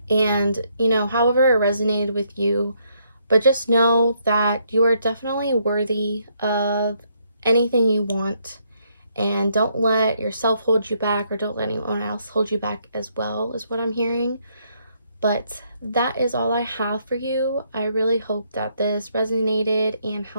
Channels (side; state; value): both; inverted; correlation -0.73